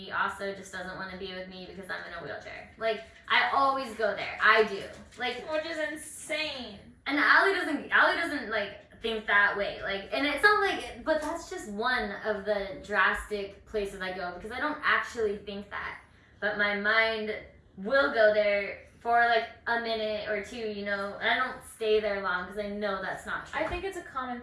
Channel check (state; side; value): identical; both; correlation 1.00